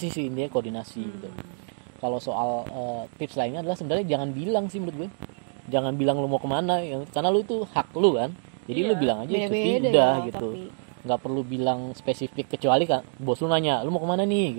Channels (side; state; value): left; silent; digital silence